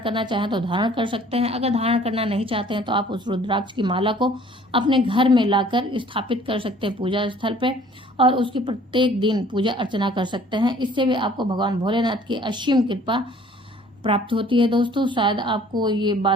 चाहें तो धारण कर सकते हैं। अगर धारण करना नहीं चाहते हैं तो आप उस रुद्राक्ष की माला को अपने घर में लाकर स्थापित कर सकते हैं पूजा स्थल पे और उसकी प्रत्येक दिन पूजा अर्चना कर सकते हैं। इससे भी आपको भगवान भोलेनाथ की असीम कृपा प्राप्त होती है दोस्तों। शायद आपको ये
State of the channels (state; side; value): normal; both; correlation 0.54